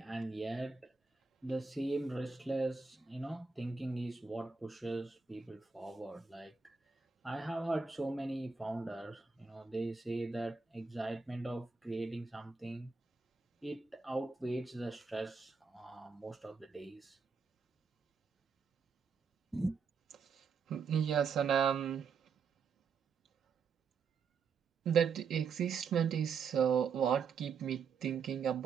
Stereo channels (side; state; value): left; quieter; 5.3 dB